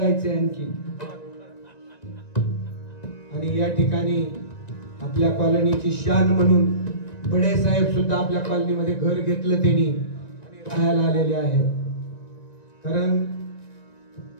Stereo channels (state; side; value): late; right; 1.9 ms